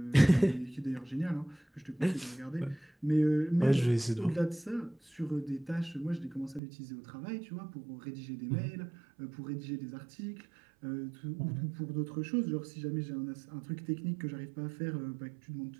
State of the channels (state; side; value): drops out; left; at 6.6 s